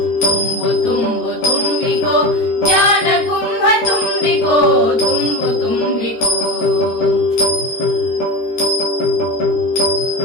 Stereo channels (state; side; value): late; right; 13 ms